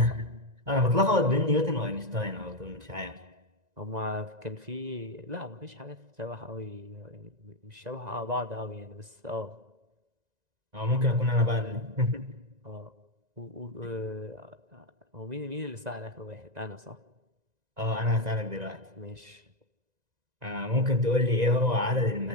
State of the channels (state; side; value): late; left; 2.0 ms